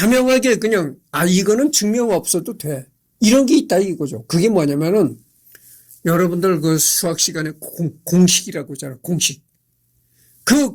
그냥 이거는 증명 없어도 돼. 이런 게 있다 이거죠. 그게 뭐냐면은 여러분들 그 수학 시간에 공식이라고 하잖아요. 공식. 그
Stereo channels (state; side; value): identical; both; correlation 1.00